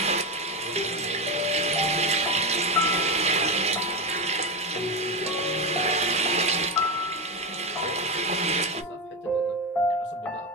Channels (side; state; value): both; normal; correlation 0.15